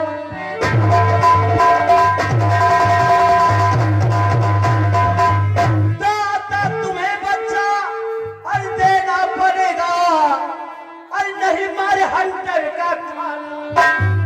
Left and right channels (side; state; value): both; identical; correlation 1.00